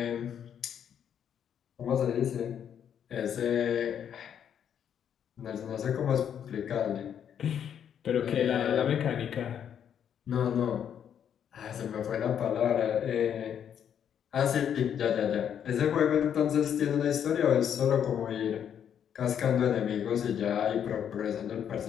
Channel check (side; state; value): right; quieter; 8.8 dB